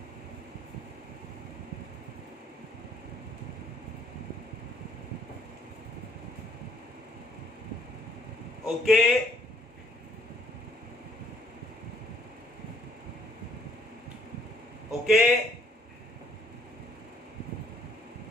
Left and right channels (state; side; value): normal; both; correlation 0.63